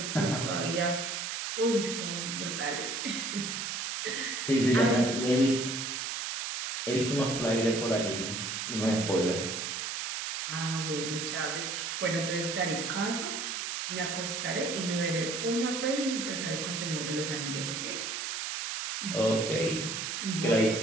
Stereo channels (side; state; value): right; noise; hiss, 3 dB below the sound